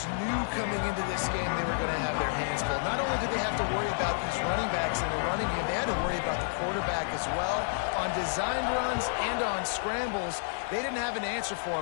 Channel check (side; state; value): right; silent; digital silence